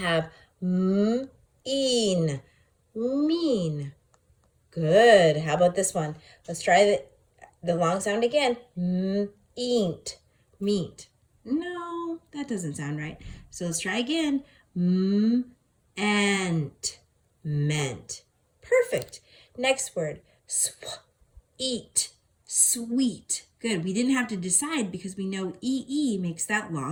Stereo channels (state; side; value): identical; both; correlation 1.00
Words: mean, mean. Good. How about this one? Let's try the long sound again. Meat, meat. No, that doesn't sound right. So let's try again. Meant, meant. Perfect. Next word. Eat, sweet. Good. We didn't have to decide because we know EE makes that